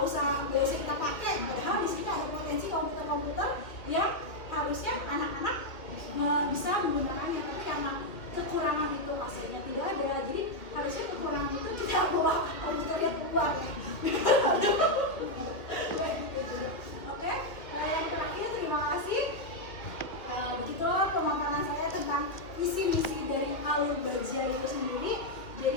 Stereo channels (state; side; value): late; right; 2.1 ms